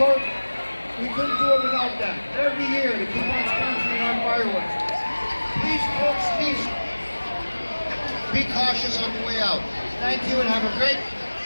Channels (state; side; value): inverted; both; correlation -1.00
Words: support. We couldn't do it without them. Every year to keep on sponsoring our fireworks. Please, folks, be cautious on the way out. Thank you and have a great